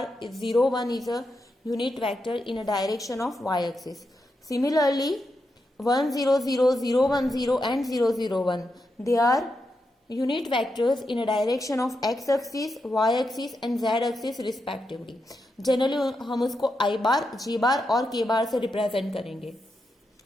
is 0 1 is a unit vector in a direction of y-axis. Similarly, 1 0 0 0 1 0 and 0 0 1 they are unit vectors in a direction of x-axis, y-axis and z-axis respectively. Generally हम उसको i bar, j bar और k bar से represent करेंगे।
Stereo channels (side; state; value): both; normal; correlation 0.85